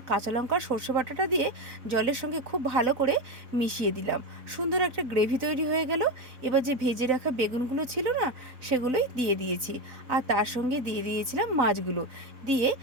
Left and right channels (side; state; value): left; late; 4.0 ms